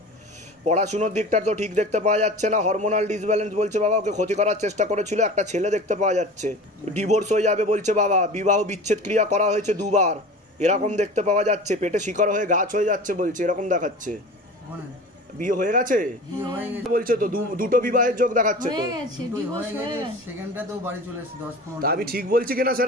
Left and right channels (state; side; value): normal; both; correlation 0.36